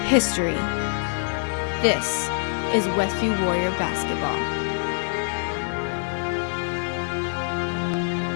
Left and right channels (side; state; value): right; silent; 55 dB below the other